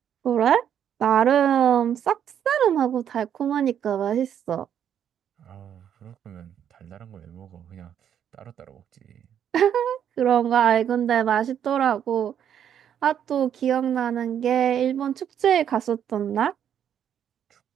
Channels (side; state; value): left; quieter; 9.2 dB